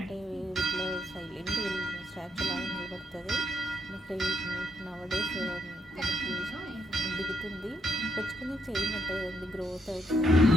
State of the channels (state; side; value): normal; both; correlation 0.76